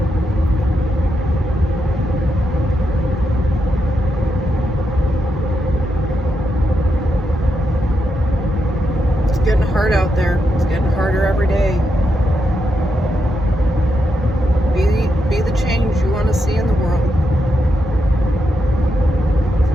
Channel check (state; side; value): normal; both; correlation 0.83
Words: It's getting hard out there. It's getting harder every day. Be the change you want to see in the world.